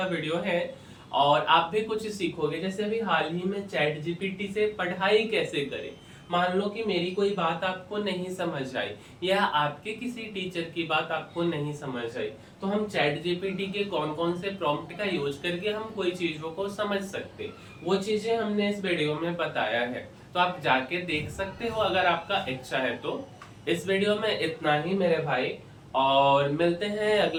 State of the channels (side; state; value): both; identical; correlation 1.00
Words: वीडियो है, और आप भी कुछ सीखोगे। जैसे अभी हाल ही में चैट जीपीटी से पढ़ाई कैसे करें। मान लो कि मेरी कोई बात आपको नहीं समझ आई, या आपके किसी टीचर की बात आपको नहीं समझ आई, तो हम चैट जीपीटी के कौन कौन से प्रॉम्प्ट का यूज करके हम कोई चीजों को समझ सकते, वो चीजें हमने इस वीडियो में बताया है। तो आप जाके देख सकते हो अगर आपका इच्छा है तो। इस वीडियो में इतना ही मेरे भाई, और मिलते हैं